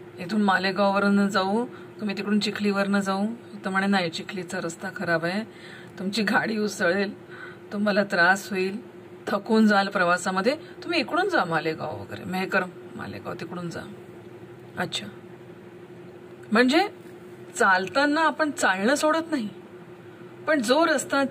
इथून मालेगाववरून जाऊ, तुम्ही तिकडून चिखलीवरनं जाऊ, तर म्हणे नाही, चिखलीचा रस्ता खराब आहे, तुमची गाडी उसळेल, तुम्हाला त्रास होईल, थकून जाल प्रवासामध्ये, तुम्ही इकडून जा मालेगाव वगैरे, मेहकर मालेगाव तिकडून जा. अच्छा, म्हणजे चालताना आपण चालणं सोडत नाही, पण जो रस्ता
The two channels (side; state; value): both; identical; correlation 1.00